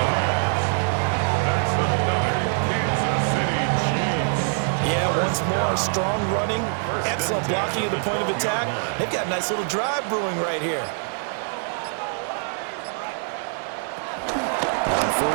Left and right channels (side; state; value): left; silent; 58 dB below the other